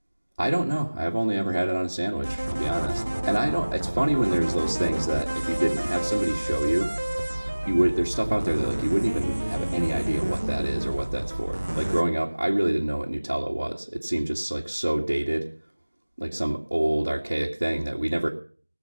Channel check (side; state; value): both; inverted; correlation -1.00